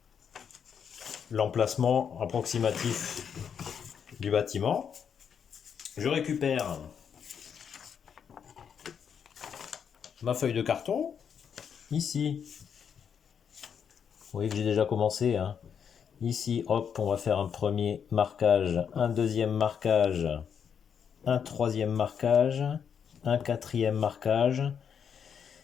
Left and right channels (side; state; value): right; quieter; 7.5 dB